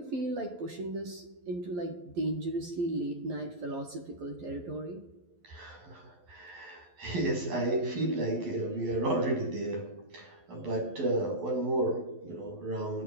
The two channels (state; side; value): late; left; 11 ms